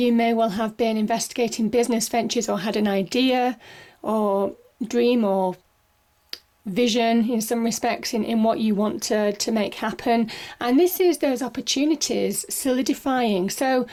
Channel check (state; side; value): identical; both; correlation 1.00